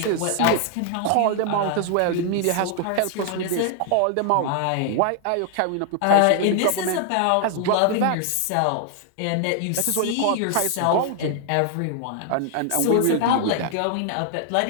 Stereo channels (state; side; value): different; both; correlation 0.00